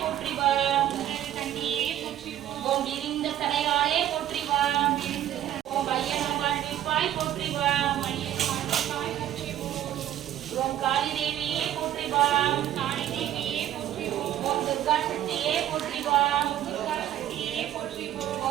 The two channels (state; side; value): quieter; left; 11.8 dB